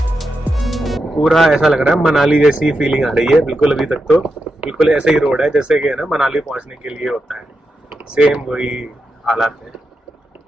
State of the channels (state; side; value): normal; both; correlation 0.87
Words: पूरा ऐसा लग रहा है मनाली जैसी फीलिंग आ रही है बिल्कुल। अभी तक तो बिल्कुल ऐसे ही रोड है जैसे कि है ना मनाली पहुंचने के लिए होता है, सेम वही हालात है।